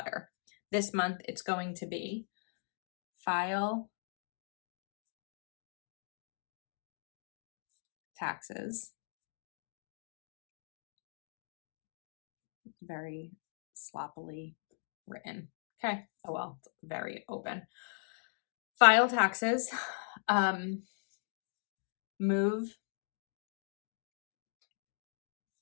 This month it's going to be file, taxes, very sloppily written. Okay, oh well, it's very open. File taxes, move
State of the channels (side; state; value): right; silent; digital silence